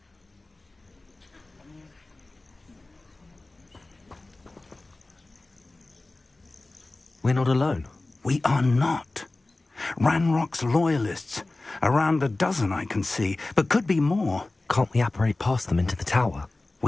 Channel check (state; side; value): quieter; right; 3.0 dB